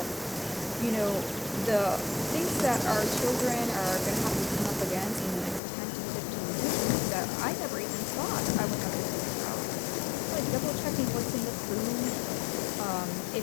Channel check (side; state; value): right; drops out; at 5.6 s